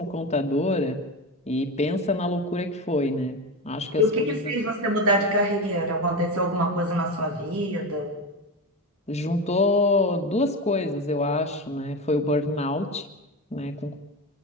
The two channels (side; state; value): both; normal; correlation 0.21